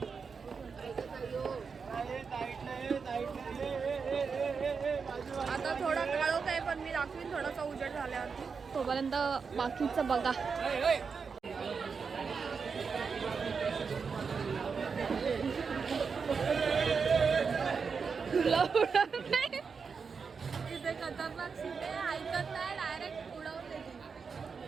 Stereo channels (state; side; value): quieter; left; 5.5 dB